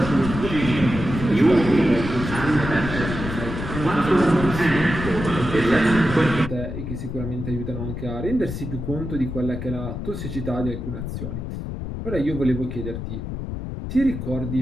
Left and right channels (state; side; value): noise; left; rumble, 6 dB below the sound